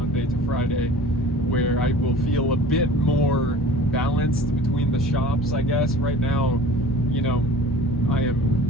to Friday, where I will feel a bit more balanced between the shops, I guess. Right now, you know, I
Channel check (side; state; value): both; normal; correlation 0.43